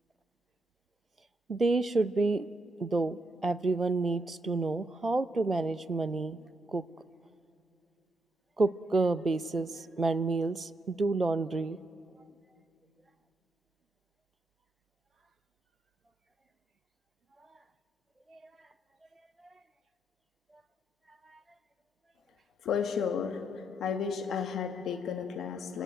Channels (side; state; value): both; normal; correlation 0.78